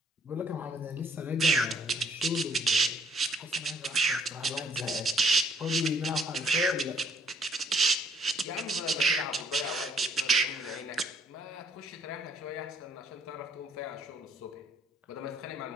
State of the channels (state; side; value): normal; both; correlation 0.64